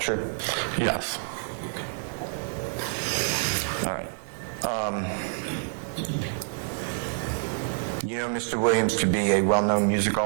Yes. All right. You know Mr. Williams to be a well-known musical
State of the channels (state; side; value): silent; left; digital silence